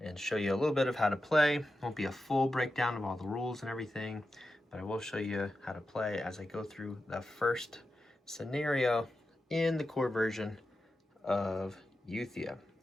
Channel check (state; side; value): normal; both; correlation 0.91